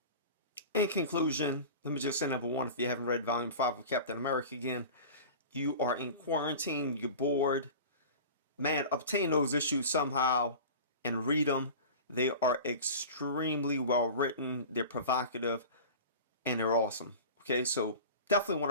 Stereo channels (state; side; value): inverted; both; correlation -0.35